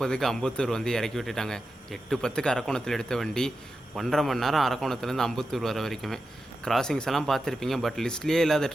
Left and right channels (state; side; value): normal; both; correlation 0.90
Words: அம்பத்தூர் வந்து இறக்கி விட்டுட்டாங்க. 8:10க்கு அரக்கோணத்தில் எடுத்த வண்டி 1.5 மணி நேரம் அரக்கோணத்துலேருந்து அம்பத்தூர் வர வரைக்குமே. கிராசிங்ஸ் எல்லாம் பார்த்துருப்பீங்க, பட் லிஸ்ட்லேயே இல்லாத